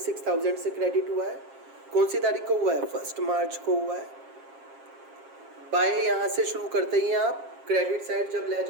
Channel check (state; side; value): late; left; 7.4 ms